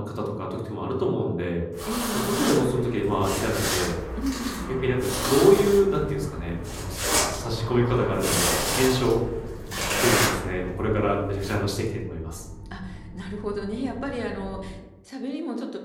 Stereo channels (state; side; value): identical; both; correlation 1.00